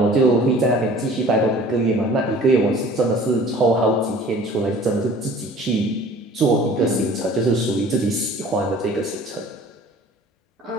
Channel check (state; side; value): normal; both; correlation 0.48